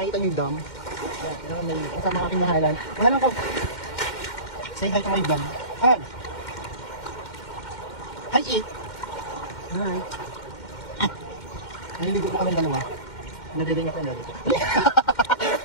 niyo yung dam? Yan, yan may kasama aking mahalan. Mahalan ko! Say hi to my vlog. Hi! Hi, It! Hi! Naliligo po kami dalawa. Nadedeng ako yung dalawa.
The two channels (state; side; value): late; right; 2.1 ms